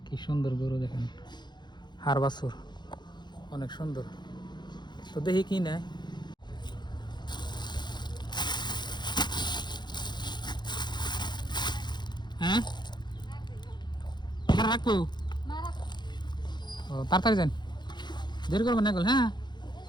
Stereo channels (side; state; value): right; late; 0.21 ms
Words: কি সুন্দর গরু দেখেন, হার বাছুর অনেক সুন্দর। তো দেখি কি নেয়। হ্যাঁ এখানে রাখবো, ও তাড়াতাড়ি যান, দেরি করবেন না গেল। হ্যাঁ